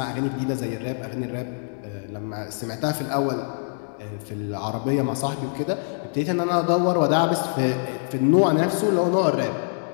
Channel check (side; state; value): right; silent; digital silence